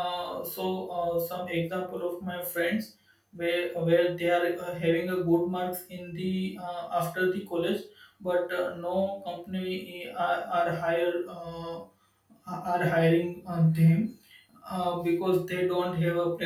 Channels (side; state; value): both; identical; correlation 1.00